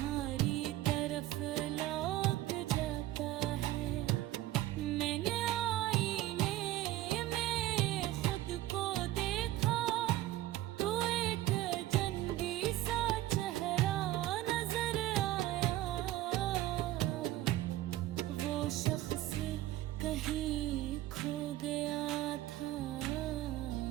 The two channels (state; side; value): quieter; left; 15.2 dB